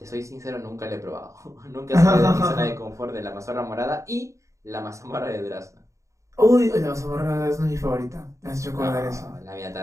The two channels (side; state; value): left; late; 0.15 ms